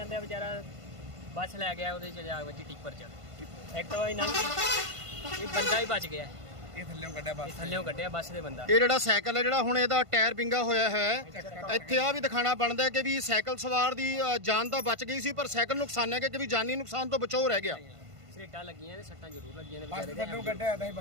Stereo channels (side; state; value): left; late; 1.5 ms